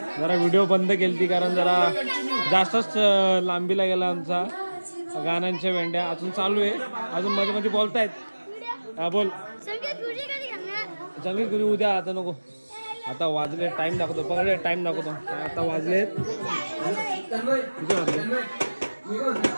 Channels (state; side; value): inverted; both; correlation -1.00